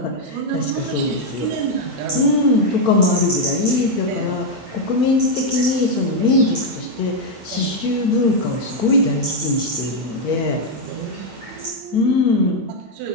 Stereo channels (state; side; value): late; left; 8.9 ms